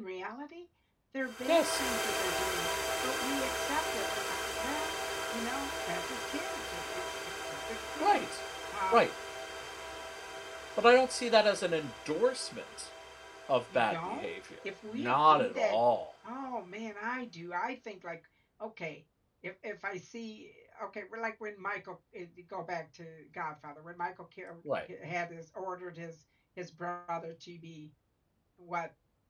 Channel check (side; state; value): both; identical; correlation 1.00